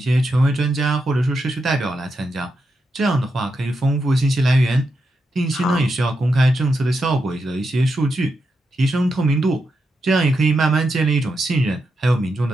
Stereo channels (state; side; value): normal; both; correlation 0.85